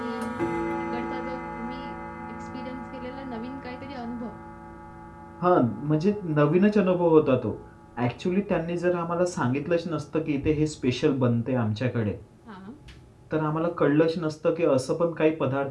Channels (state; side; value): identical; both; correlation 1.00